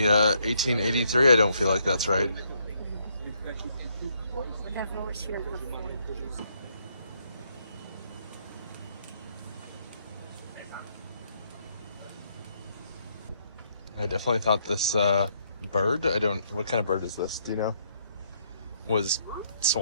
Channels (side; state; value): both; inverted; correlation -0.72